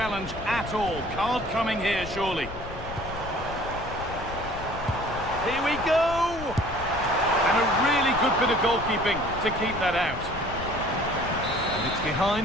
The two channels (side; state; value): left; noise; rumble, 12 dB below the sound